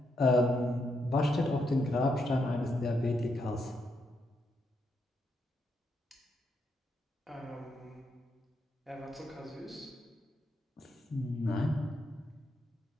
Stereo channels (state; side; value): normal; both; correlation 0.79